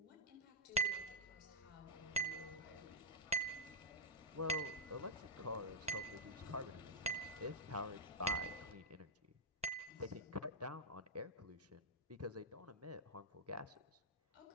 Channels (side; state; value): both; normal; correlation -0.06